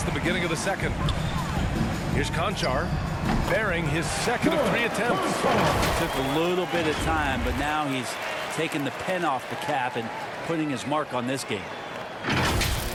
the beginning of the second. Here's Conchar, bearing his second of 3 attempts. Took a little bit of time, but now he's taking the pen off the cap and putting his mark on this game.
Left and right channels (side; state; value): both; identical; correlation 1.00